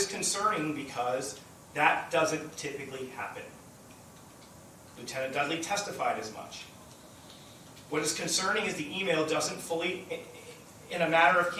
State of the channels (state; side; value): identical; both; correlation 1.00